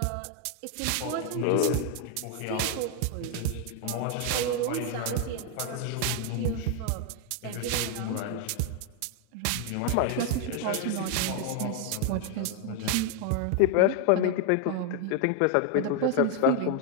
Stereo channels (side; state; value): both; different; correlation 0.01